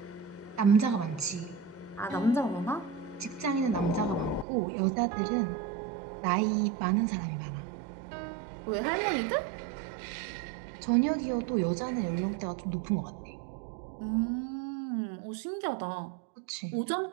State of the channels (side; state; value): left; drops out; at 4.5 s